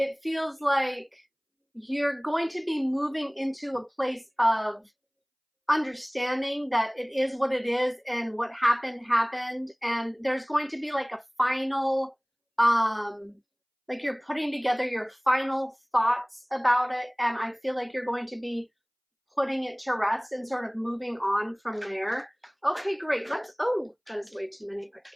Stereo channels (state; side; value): identical; both; correlation 1.00